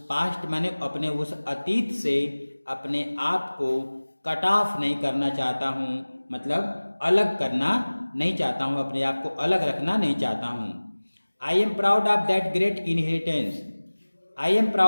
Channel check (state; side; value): inverted; both; correlation -1.00